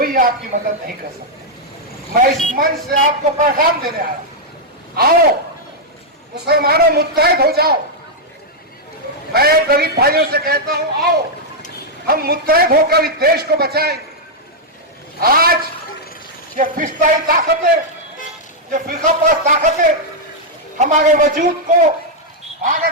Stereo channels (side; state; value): both; normal; correlation -0.04